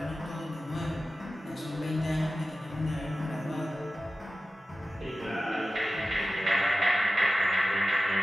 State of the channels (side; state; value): both; normal; correlation 0.94